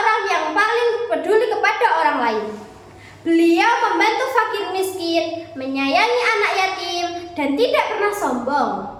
yang paling peduli kepada orang lain. Beliau membantu fakir miskin, menyayangi anak yatim, dan tidak pernah sombong.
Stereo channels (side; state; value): both; identical; correlation 1.00